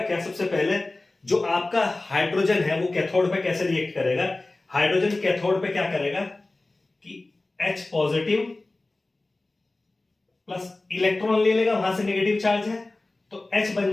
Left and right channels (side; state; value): right; quieter; 3.0 dB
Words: सबसे पहले जो आपका हाइड्रोजन है वो कैथोड पे कैसे रिएक्ट करेगा, हाइड्रोजन कैथोड पे क्या करेगा कि H पॉजिटिव प्लस इलेक्ट्रॉन ले लेगा, वहां से नेगेटिव चार्ज है तो H बन